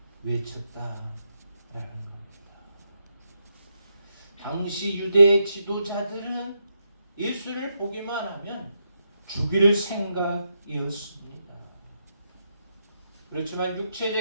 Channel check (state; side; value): inverted; both; correlation -0.81